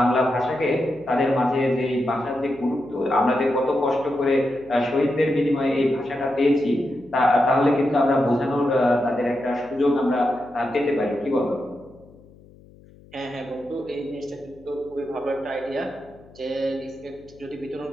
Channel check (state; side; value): noise; left; hum, 24 dB below the sound